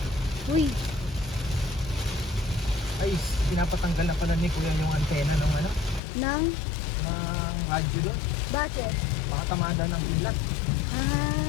Uy, Ay, pinapatanggal na pala ni Kuya yung antena ng ano? nang Ng radyo doon. bakit? Baka tamaan daw ng pila.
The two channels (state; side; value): drops out; right; at 6.0 s